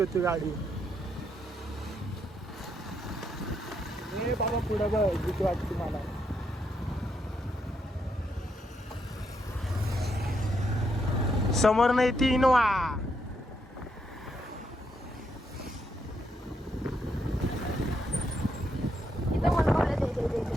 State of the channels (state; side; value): normal; both; correlation 0.78